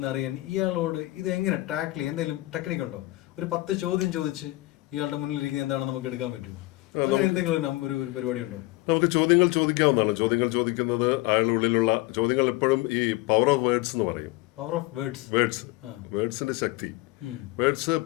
ഇയാളോട് ഇത് എങ്ങനെ ടാക്കിൾ ചെയ്യും? എന്തെങ്കിലും ടെക്നിക്കുണ്ടോ? ഒരു 10 ചോദ്യം ചോദിച്ച് ഇയാളുടെ മുന്നിലിരിക്കുന്നത് എന്താണെന്ന് നമുക്ക് എടുക്കാൻ പറ്റുമോ? അങ്ങനെ എന്തെങ്കിലും ഒരു പരിപാടി ഉണ്ടോ? നമുക്ക് ചോദ്യങ്ങൾ ചോദിക്കാവുന്നതാണ്. ചോദ്യങ്ങൾ ചോദിക്കുന്നത് അയാളുടെ ഉള്ളിലുള്ള ചോദ്യങ്ങൾ എപ്പോഴും ഈ പവർ ഓഫ് വേർഡ്സ് എന്ന് പറയും. പവർ ഓഫ് വേർഡ്സിന്റെ ശക്തി. വേർഡ്സ്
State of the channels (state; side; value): quieter; right; 20.0 dB